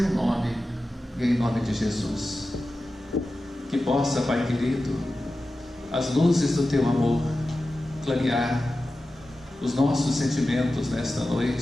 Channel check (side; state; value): both; normal; correlation 0.93